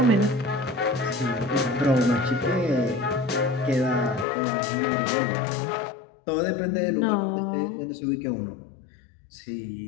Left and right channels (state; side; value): drops out; right; at 4.2 s